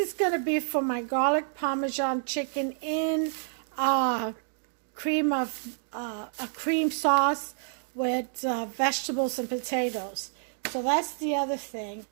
going to be for my garlic parmesan chicken in a cream sauce with vegetables and potatoes. So that's the other thing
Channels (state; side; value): silent; left; digital silence